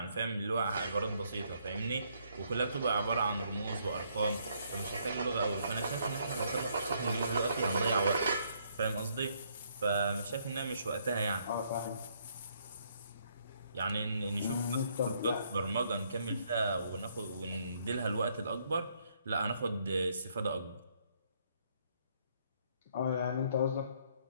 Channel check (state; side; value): inverted; both; correlation -0.70